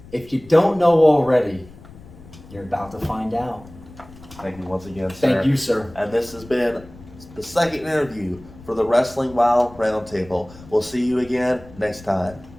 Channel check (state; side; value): noise; left; rumble, 20 dB below the sound